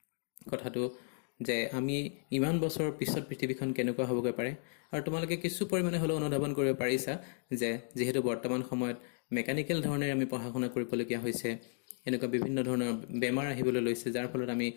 কথাটো যে আমি ইমান বছৰ পিছত পৃথিৱীখন কেনেকুৱা হ'বগৈ পাৰে আৰু তোমালোকে কিছু পৰিমাণে হ'লেও অনুধাৱন কৰিব পাৰিছা যে যেহেতু বৰ্তমান সময়ত মেকানিকেল ধৰণে আমি পঢ়া শুনা কৰিবলগীয়া হৈছে এনেকুৱা বিভিন্ন ধৰণৰ বেমাৰ আহিবলৈ লৈছে যাৰ ফলত আমি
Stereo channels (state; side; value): silent; right; 55 dB below the other